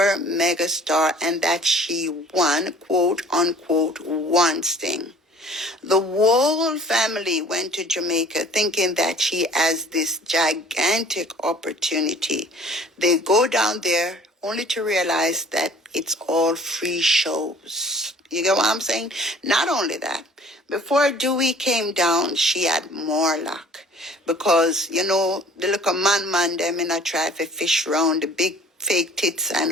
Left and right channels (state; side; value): normal; both; correlation 0.51